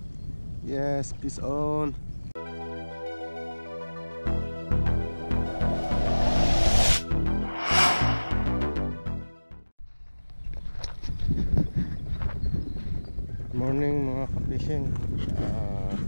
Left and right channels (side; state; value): both; inverted; correlation -1.00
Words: Yes, peace on. Morning mga ka-fishing.